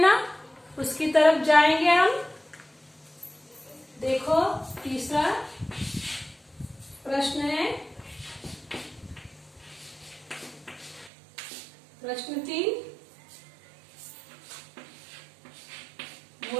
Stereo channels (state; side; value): drops out; left; at 11.1 s